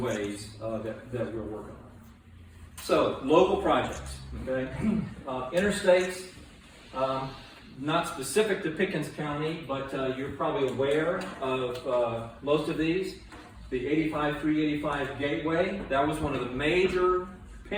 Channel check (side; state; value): both; identical; correlation 1.00